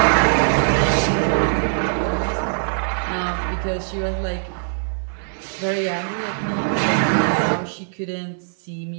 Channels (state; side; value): silent; left; 65 dB below the other